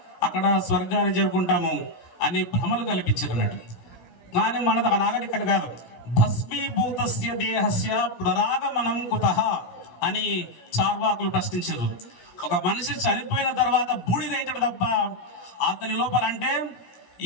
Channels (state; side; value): late; right; 17 ms